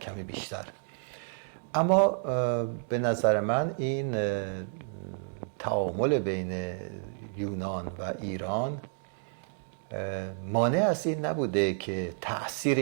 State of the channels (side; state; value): left; silent; digital silence